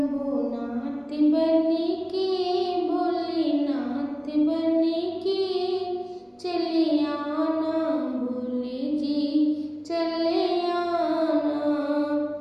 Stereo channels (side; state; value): both; identical; correlation 1.00